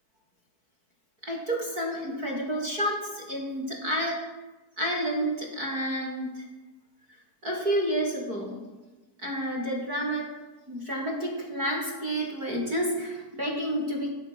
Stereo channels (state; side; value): late; left; 4.6 ms